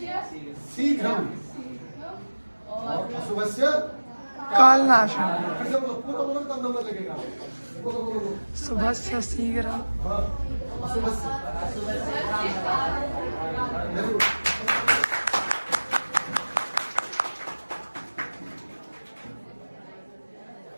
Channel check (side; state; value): both; inverted; correlation -1.00